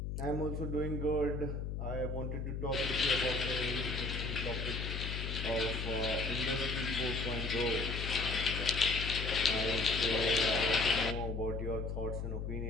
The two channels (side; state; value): left; noise; hum, 3 dB below the sound